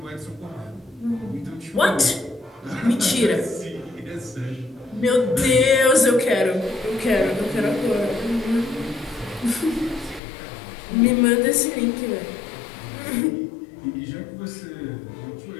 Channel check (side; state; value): right; drops out; at 10.2 s